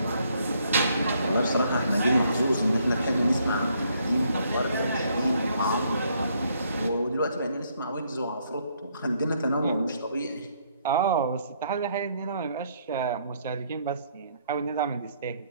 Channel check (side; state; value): both; inverted; correlation -0.69